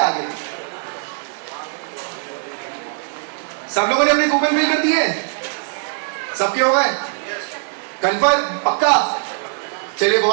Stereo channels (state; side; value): silent; left; 57 dB below the other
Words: आगे। सब लोगों ने अपने कूपन फिल कर दिए? सबके हो गए? कंफर्म? पक्का? चलिए,